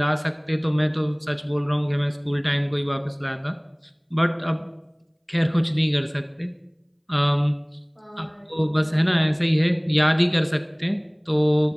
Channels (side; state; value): both; identical; correlation 1.00